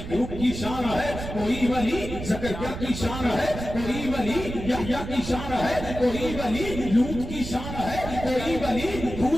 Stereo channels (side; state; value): right; noise; rumble, 8 dB below the sound